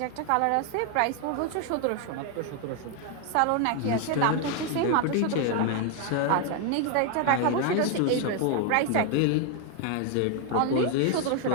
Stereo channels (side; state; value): both; different; correlation 0.01